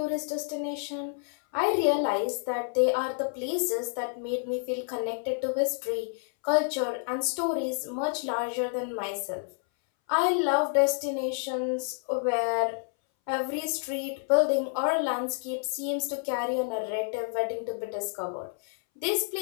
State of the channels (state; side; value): silent; right; 59 dB below the other